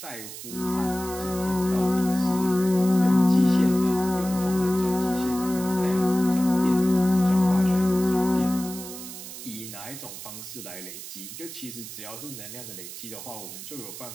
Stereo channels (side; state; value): right; noise; hiss, 11 dB below the sound